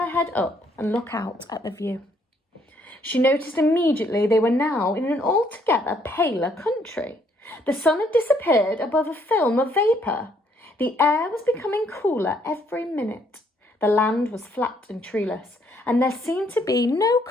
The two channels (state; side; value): normal; both; correlation 0.68